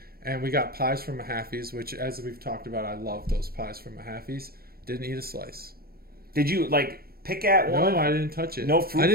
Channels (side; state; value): left; late; 0.44 ms